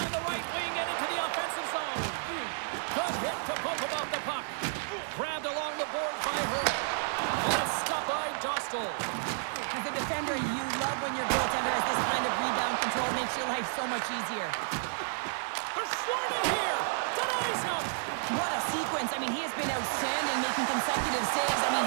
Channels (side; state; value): left; silent; digital silence